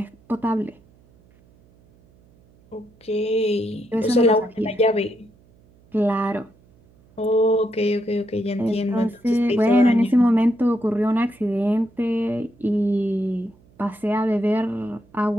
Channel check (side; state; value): right; noise; hum, 30 dB below the sound